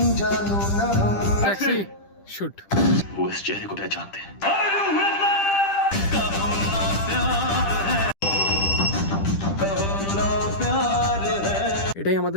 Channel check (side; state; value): right; late; 10 ms